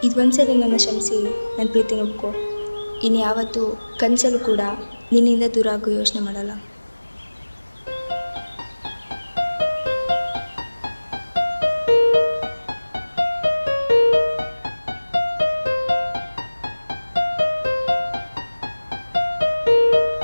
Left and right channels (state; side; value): inverted; both; correlation -1.00